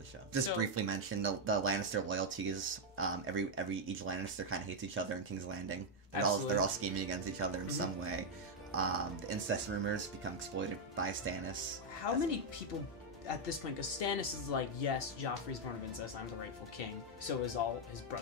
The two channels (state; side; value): normal; both; correlation 0.00